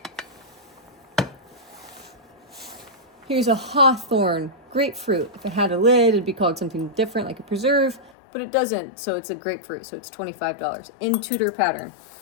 Here's a hawthorn grapefruit. If it had a lid, it'd be called something different, like a preserve, but it doesn't, so it's a grapefruit, so it's $25 in Tudor pattern.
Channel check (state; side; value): drops out; right; at 8.1 s